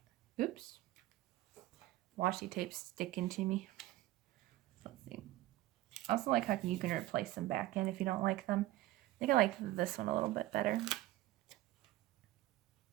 Oops. Washi tape sticking to me. Let's see. I also like how you can replace them back in if you don't like them. I think I like this one a little bit better.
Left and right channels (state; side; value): quieter; left; 16.1 dB